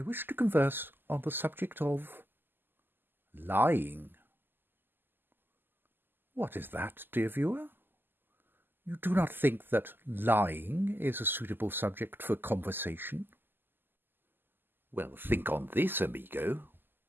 wish to converse on the subject of lying. What is that, dear viewer? You do not think that lying is a suitable subject for conversation? Well, think on this, amigo.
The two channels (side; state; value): left; late; 0.094 ms